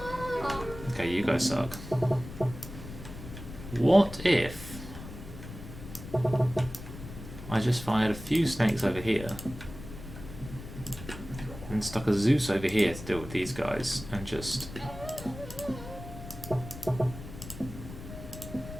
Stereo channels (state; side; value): noise; left; rumble, 12 dB below the sound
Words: Okay, you guys suck. What if I just fired a few snakes over here and stuck a Zeus over here to deal with these guys and just